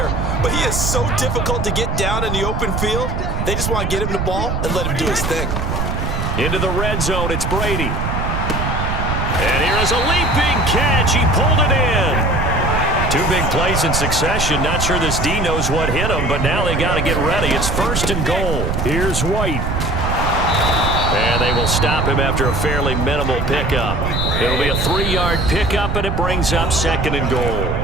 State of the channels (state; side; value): noise; right; rumble, 1 dB below the sound